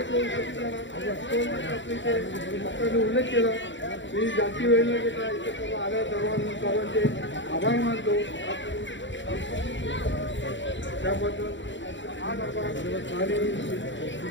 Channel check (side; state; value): right; late; 0.54 ms